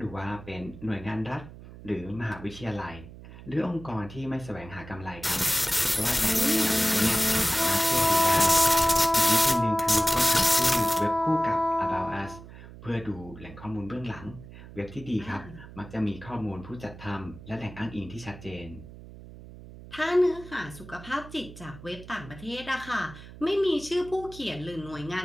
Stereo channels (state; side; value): noise; right; hum, 16 dB below the sound